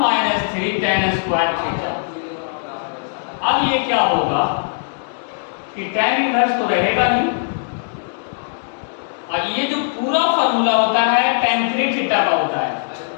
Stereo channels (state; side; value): silent; right; digital silence